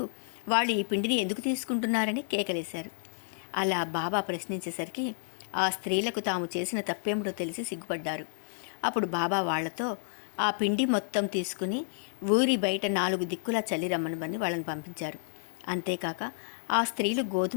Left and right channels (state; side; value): silent; right; digital silence